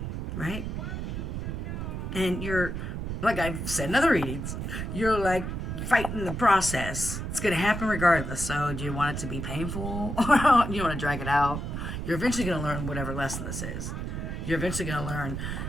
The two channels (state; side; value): noise; right; rumble, 4 dB below the sound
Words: Right? And you're, like I've said in other readings, you're like fighting the process. It's going to happen regardless. So do you want it to be painful? Or you want to drag it out? You're eventually going to learn whatever lesson this is. You're eventually going to learn